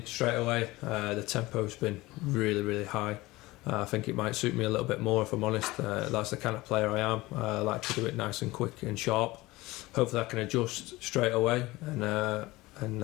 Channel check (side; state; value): right; quieter; 19.9 dB